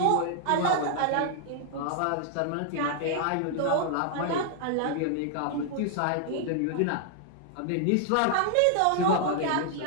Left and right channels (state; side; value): different; both; correlation -0.01